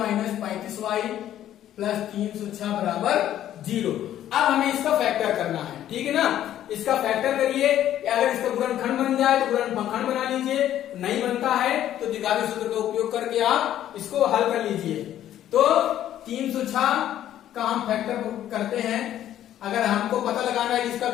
35y plus 306 बराबर 0। अब हमें इसका फैक्टर करना है, ठीक है ना। इसका फैक्टर करिए, अगर इसका गुणनखंड बन जाए तो गुणनखंड बना लीजिए, नहीं बनता है तो द्विघाती सूत्र का उपयोग करके आप इसको हल कर लीजिए। तो 306 का हम फैक्टर करते हैं, अगर हमको पता लगाना है कि इसका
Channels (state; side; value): quieter; right; 11.8 dB